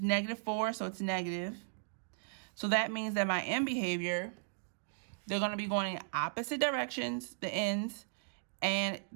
so it's negative. So that means that my end behavior, they're going to be going in opposite directions, the ends, and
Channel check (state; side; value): silent; left; digital silence